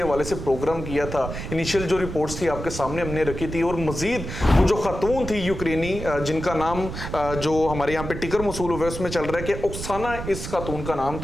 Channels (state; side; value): noise; right; rumble, 8 dB below the sound